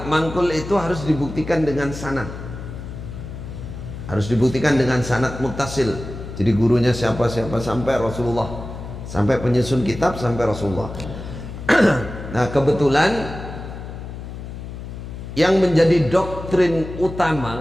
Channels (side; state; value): left; noise; hum, 10 dB below the sound